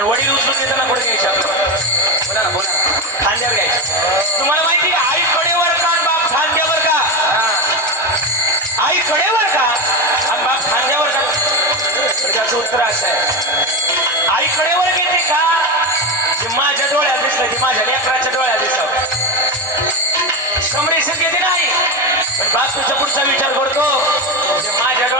वडील उचलून देताना पुढे घ्यायचे आपलं. बोला ना बोला ना, खांद्यावर घ्यायचं. तुम्हाला माहिती का आई कडेवर का आणि बाप खांद्यावर का? आई कडेवर का आणि बाप खांद्यावर का? तर त्याचं उत्तर असं आहे, आई कडेवर घेते का जे माझ्या डोळ्यात दिसलं, ते माझ्या लेकराच्या डोळ्यात दिसलं. संप्रेषण घेते नाही, पण बाप तुझ्या पुढचा विचार करतो जे माझ्या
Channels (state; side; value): normal; both; correlation 0.16